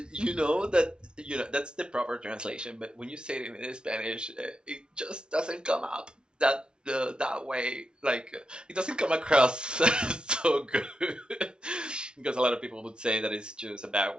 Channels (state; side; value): late; left; 0.055 ms